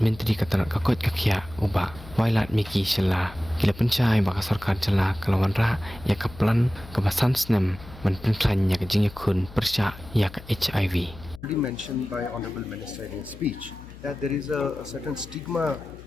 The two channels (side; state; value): left; noise; hum, 18 dB below the sound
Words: Menteri Katarat Kakot Kakia uba Wailat Miki Shala kila pencai baka Sorkar Jala kalau wanrah ya kaplan kebasan snem man pynkhlaiñ ya ka jingïakhun pyrshah ya ka HIV. Already mentioned by Honorable Minister in his speech that there is a certain stigma